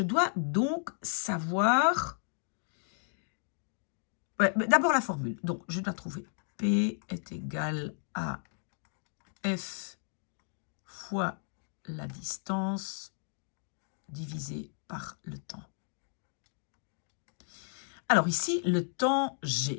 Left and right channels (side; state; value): right; silent; 55 dB below the other